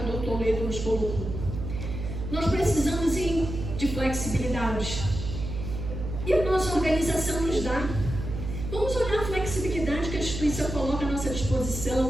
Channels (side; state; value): right; noise; hum, 6 dB below the sound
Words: Toledo nos colocou. Nós precisamos de flexibilidade. E a nossa organização nos dá. Vamos olhar a flexibilidade que a instituição coloca à nossa